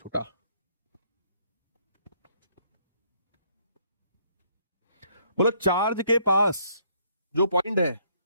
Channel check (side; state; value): both; inverted; correlation -0.66